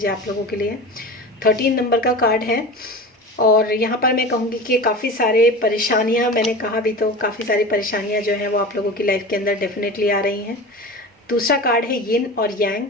है आप लोगों के लिए। 13 नंबर का कार्ड है और यहाँ पर मैं कहूँगी कि काफ़ी सारे परेशानियाँ, मैंने कहा भी तो काफ़ी सारी परेशानियाँ जो हैं वो आप लोगों की लाइफ के अंदर डेफिनेटली आ रही हैं। दूसरा कार्ड है यिन और yang,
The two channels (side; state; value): both; normal; correlation 0.32